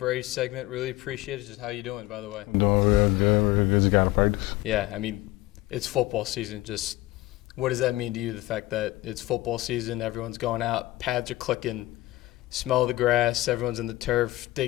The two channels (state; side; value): quieter; right; 18.2 dB